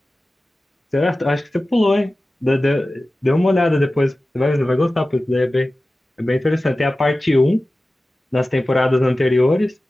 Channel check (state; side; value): normal; both; correlation 0.96